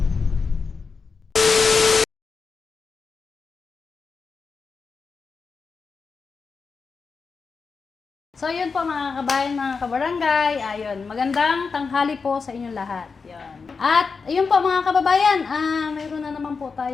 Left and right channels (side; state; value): right; quieter; 5.0 dB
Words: So yun po mga kabayan, mga kabarangay, ayun, magandang tanghali po sa inyong lahat. Yun. At ayun po mga kababayan, mayroon na naman po